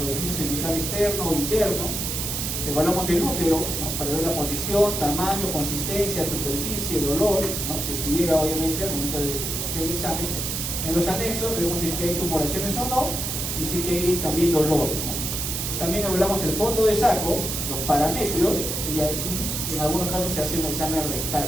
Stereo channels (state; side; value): noise; right; hiss, 2 dB below the sound